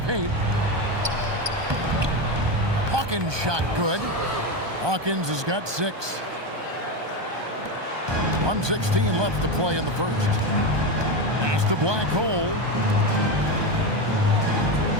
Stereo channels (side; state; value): left; late; 1.2 ms